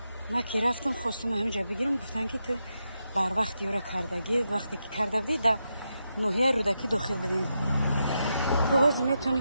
ما که رفتم خواستم همینجا بگیرم، گفتن که تو بر وقت یورا کردگی، وقتی که کرده بودی در ناحیه رودکی داخل بودیم. کاغذ میتونی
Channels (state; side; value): inverted; both; correlation -0.85